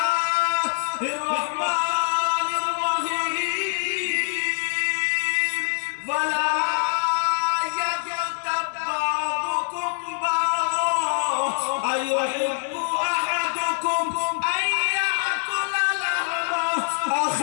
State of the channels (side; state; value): right; silent; 62 dB below the other